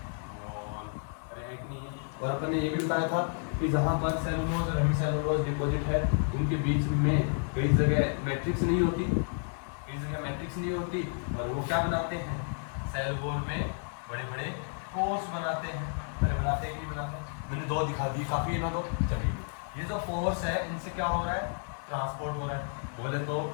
वॉल। अरे एक नहीं, और अपन ने ये भी बताया था कि जहाँ पर सेलुलोज और हेमीसेलुलोज डिपॉजिट है उनके बीच में कई जगह मैट्रिक्स नहीं होती, और वो क्या बनाते हैं, सेल वॉल में बड़े बड़े पोर्स बनाते हैं। बनाते हैं कि नहीं बनाते? मैंने दो दिखा दी, काफी है ना। तो चलिए ये जो पोर्स है इनसे क्या हो रहा है, ट्रांसपोर्ट हो रहा है। बोले तो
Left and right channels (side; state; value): right; silent; 57 dB below the other